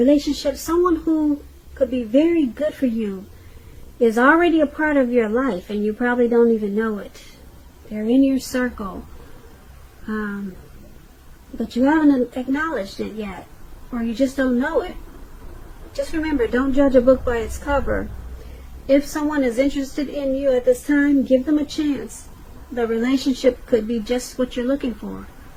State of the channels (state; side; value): identical; both; correlation 1.00